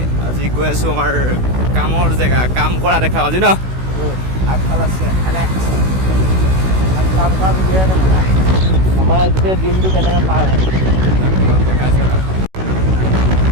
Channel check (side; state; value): left; late; 16 ms